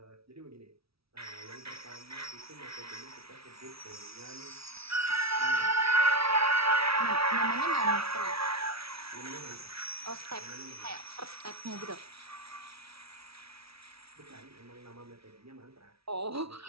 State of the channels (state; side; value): late; left; 0.76 ms